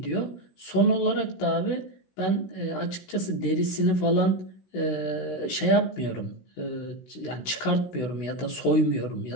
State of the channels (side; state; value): right; late; 16 ms